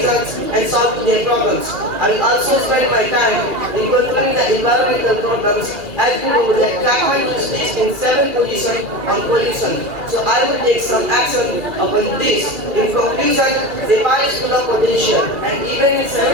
and solving their problems. I will also spend my time in controlling the environmental problems, as we know that Kathmandu is listed in 7th position on pollution. So I will take some action upon this. In conclusion, Nepal is full of potential, and even in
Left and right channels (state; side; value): late; left; 2.6 ms